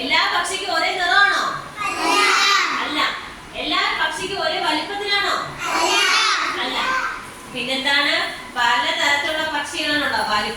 പക്ഷിക്കും ഒരേ നിറമാണോ? അല്ല. എല്ലാ പക്ഷിക്കും ഒരേ വലിപ്പത്തിലാണോ? അല്ല. പിന്നെന്താണ്? പലതരത്തിലുള്ള പക്ഷികളാണുണ്ടോ?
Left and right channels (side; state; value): both; identical; correlation 1.00